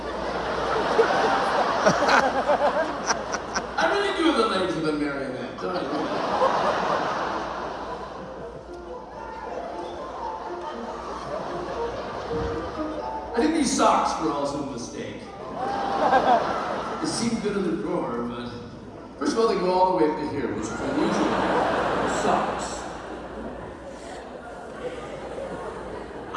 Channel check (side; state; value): both; identical; correlation 1.00